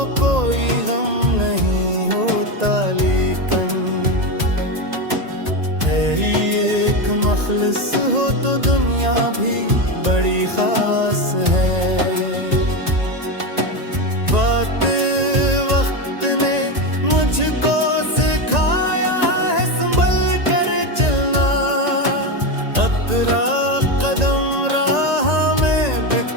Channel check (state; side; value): late; left; 1.9 ms